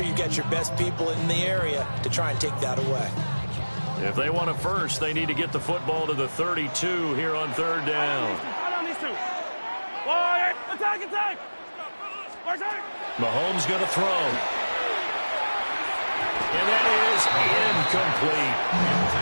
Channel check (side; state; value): both; inverted; correlation -1.00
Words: you've got your best people in the area to try and take that away. If they want it first, they need to get the football to the 32 here on 3rd down. Mahomes going to throw. And that is incomplete.